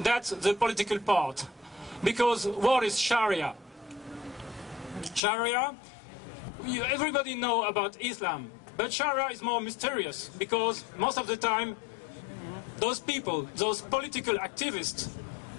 That's the political part. Because what is Sharia? Sharia, everybody knows about Islam. But Sharia is more mysterious because most of the time those people, those political activists,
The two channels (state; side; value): drops out; right; at 5.2 s